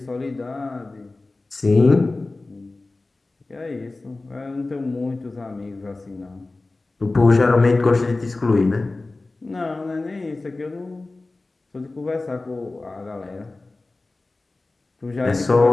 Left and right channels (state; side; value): quieter; right; 3.2 dB